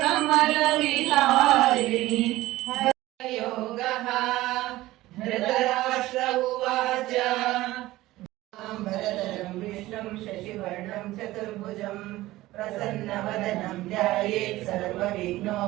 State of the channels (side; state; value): left; quieter; 17.2 dB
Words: कमलविहारिणि योगः। धृतराष्ट्र उवाच भरतरं विष्णुं शशिवर्णं चतुर्भुजं प्रसन्नवदनं ध्यायेत्